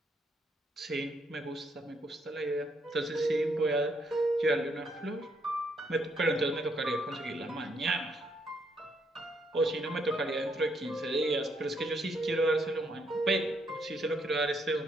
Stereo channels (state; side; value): normal; both; correlation 0.74